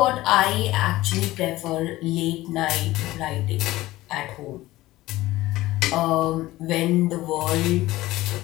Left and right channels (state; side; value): quieter; right; 17.3 dB